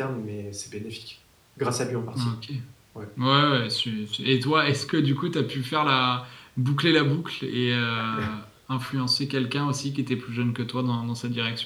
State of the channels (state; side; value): identical; both; correlation 1.00